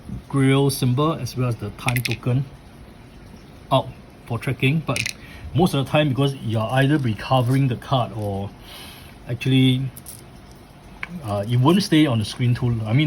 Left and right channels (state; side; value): identical; both; correlation 1.00